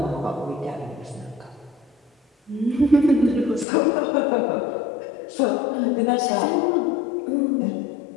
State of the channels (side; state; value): right; drops out; at 3.7 s